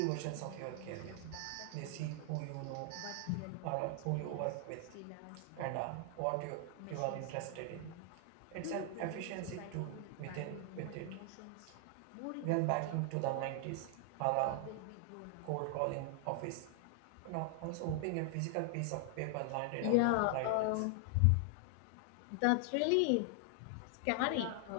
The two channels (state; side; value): different; both; correlation 0.00